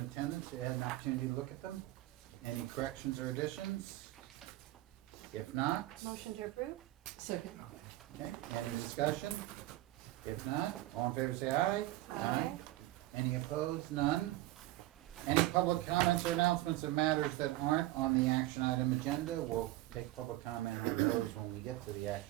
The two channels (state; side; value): quieter; left; 16.8 dB